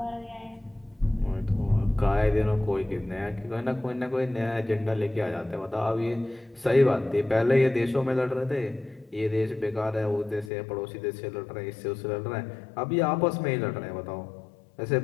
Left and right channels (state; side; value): drops out; right; at 10.5 s